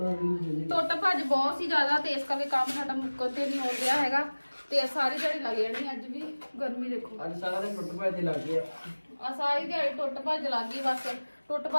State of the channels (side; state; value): both; inverted; correlation -1.00